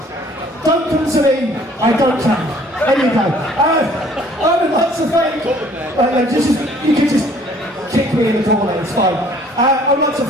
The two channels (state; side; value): normal; both; correlation 0.57